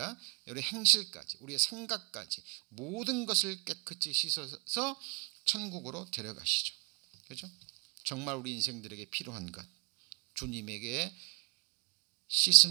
우리 행실까지, 우리의 생각까지 모든 것을 깨끗이 씻어서 천국으로 데려가시죠. 그죠? 정말 우리 인생들에게 필요한 것, 주님에게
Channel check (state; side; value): quieter; left; 33.4 dB